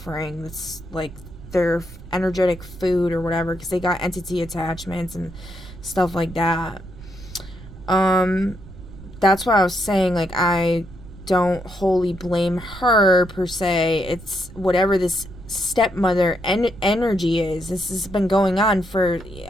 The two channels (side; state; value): right; noise; rumble, 16 dB below the sound